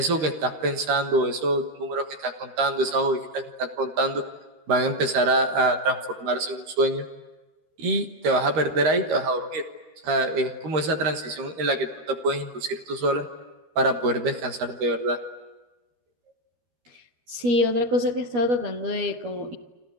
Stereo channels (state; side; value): late; left; 13 ms